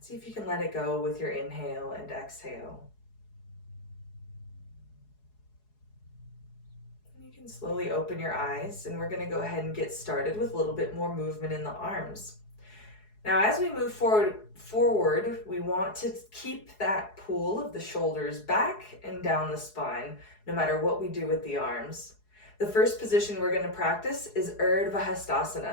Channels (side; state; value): right; late; 4.7 ms